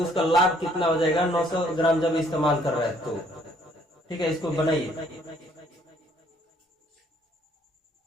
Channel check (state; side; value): normal; both; correlation 0.63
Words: उसका लाभ कितना हो जाएगा 900 ग्राम जब इस्तेमाल कर रहा है तो। ठीक है, इसको बनाइए,